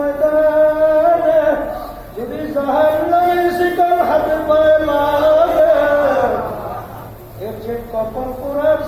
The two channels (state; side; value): identical; both; correlation 1.00